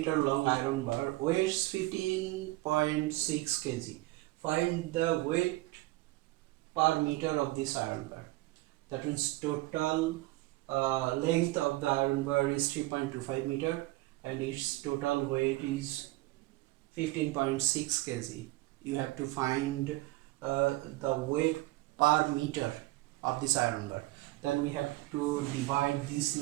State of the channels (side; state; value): left; quieter; 19.3 dB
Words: long iron bar weighs 15.6 kg. Find the weight per meter of this iron bar. That means total length of the iron bar is 3.25 meter and its total weight is 15.6 kg. You have to find the weight per meter of this iron bar. Then we have to divide this